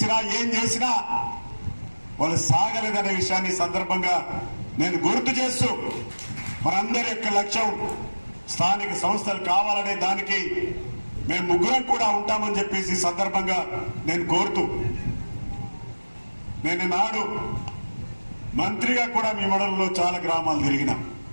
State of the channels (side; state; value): both; inverted; correlation -1.00